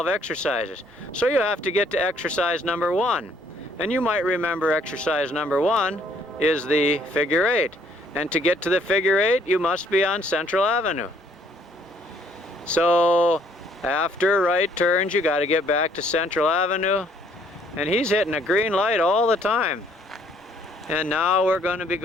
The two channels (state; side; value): normal; both; correlation 0.64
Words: exercises. So you have to get to exercise number 1. And you might remember exercise number 1 is the figure 8. And to get to the figure 8, you must be on Central Avenue. So after right turns, you got to get back to Central Avenue. And he's hitting a green light all the time. And now we're going to be